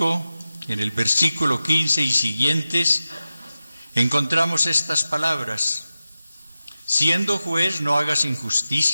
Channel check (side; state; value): both; inverted; correlation -0.93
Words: en el versículo 15 y siguientes, encontramos estas palabras: siendo juez no hagas